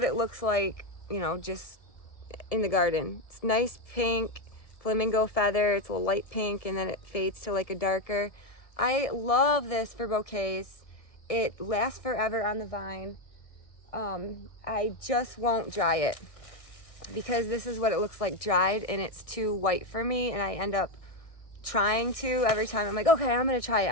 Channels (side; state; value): right; late; 1.6 ms